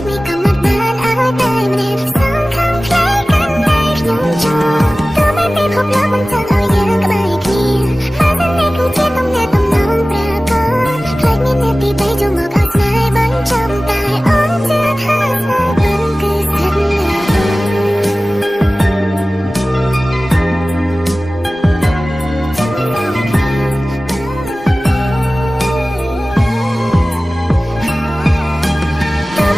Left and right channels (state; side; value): normal; both; correlation 0.97